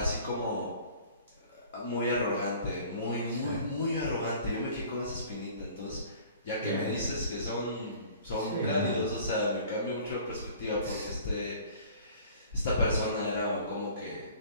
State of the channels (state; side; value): inverted; both; correlation -0.49